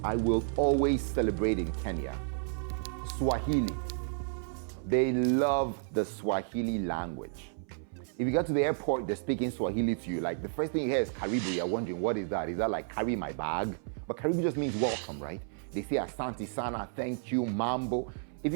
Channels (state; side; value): silent; left; 57 dB below the other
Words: I will always celebrate in Kenya, Swahili. They love the Swahili language. If you get to the airport, they're speaking Swahili to you. Like the first thing you hear is Karibu. You're wondering, what is that? Is that like carry my bag? But Karibu just means welcome, right? They say Asante Sana, thank you, Mambo. If